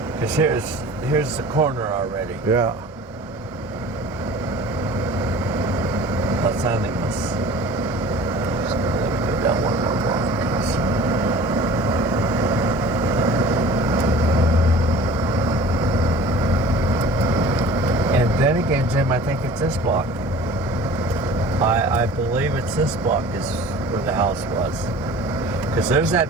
Because here's the corner already. Yeah. Los Animas. Just gonna let me go down one more block. And then again, Jim, I think it's this block. I believe it's this block is where the house was. Because there's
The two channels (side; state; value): both; normal; correlation 0.44